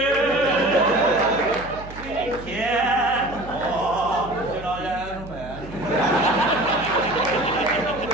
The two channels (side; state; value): right; noise; hum, 15 dB below the sound